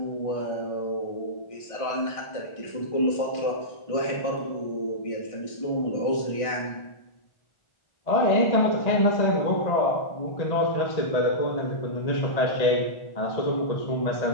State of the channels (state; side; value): late; right; 1.4 ms